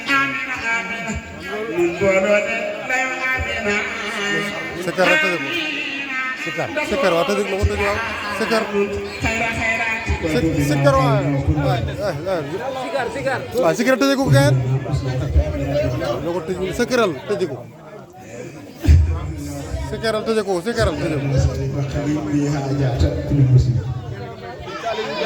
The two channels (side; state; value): both; identical; correlation 1.00